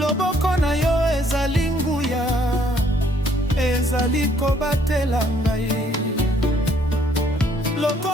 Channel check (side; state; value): both; normal; correlation 0.65